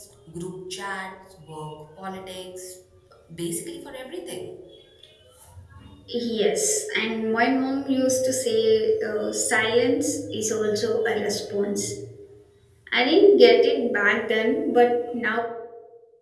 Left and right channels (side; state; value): both; identical; correlation 1.00